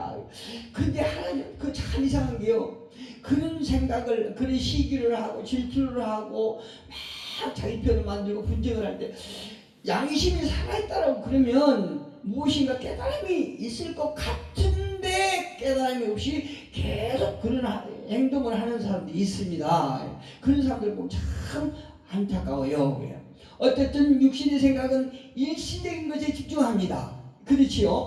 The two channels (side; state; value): both; identical; correlation 1.00